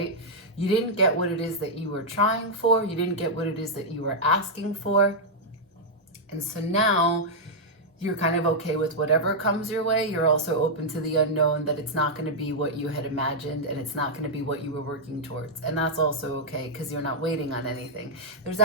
You didn't get what it is that you were trying for. You didn't get what it is that you were asking for. And so now you're kind of okay with whatever comes your way. You're also open to the unknown, that it's not going to be what you had imagined and it's not going to be what you were working towards. And that's also okay because you're not waiting on anything. There's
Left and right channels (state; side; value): normal; both; correlation -0.05